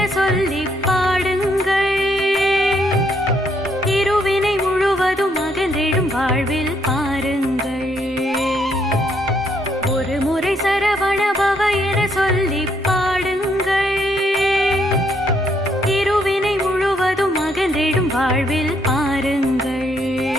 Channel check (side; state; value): both; normal; correlation 0.72